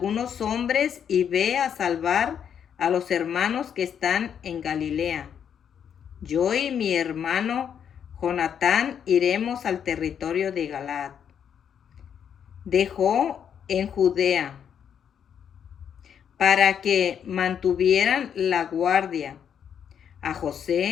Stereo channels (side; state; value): right; quieter; 8.3 dB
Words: hombres y ve a salvar a los hermanos que están en Galilea. Yo y mi hermano Jonatán iremos al territorio de Galaad. Dejó en Judea para que mantuvieran la guardia a